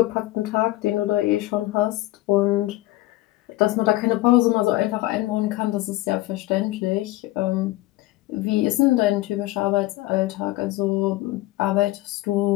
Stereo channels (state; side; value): quieter; right; 17.7 dB